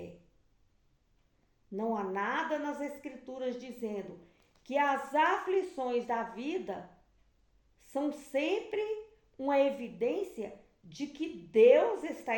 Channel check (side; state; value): both; identical; correlation 1.00